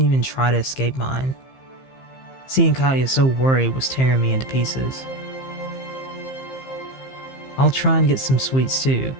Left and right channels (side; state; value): right; late; 15 ms